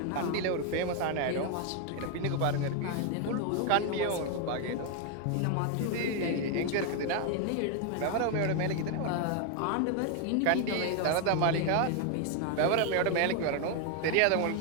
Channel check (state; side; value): different; both; correlation 0.01